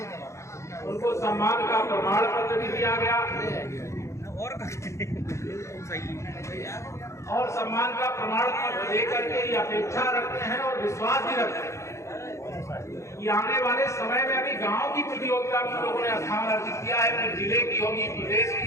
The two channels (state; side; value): late; right; 0.14 ms